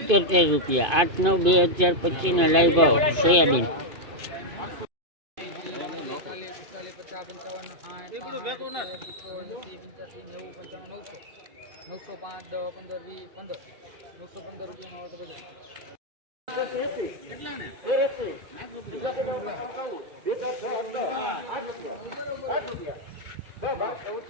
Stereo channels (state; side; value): late; left; 2.5 ms